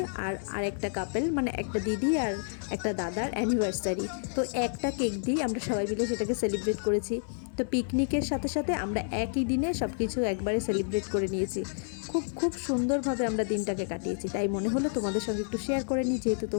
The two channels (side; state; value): right; silent; 56 dB below the other